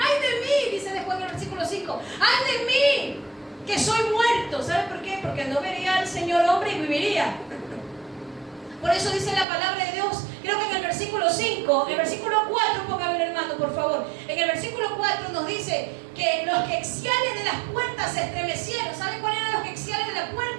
de mí! Dice después en el versículo 5, ¡ay de mí! Que soy muerto. ¿Sabe por qué? Porque no vería al Señor hombre y viviría. Por eso dice la palabra de Dios, creo que en el versículo 5, el versículo 4, póngame hermano, por favor. En el versículo 4 nos dice que los quexiales de las puertas se estremecieron. ¿Saben cuáles eran los quexiales de la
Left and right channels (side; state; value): left; drops out; at 9.5 s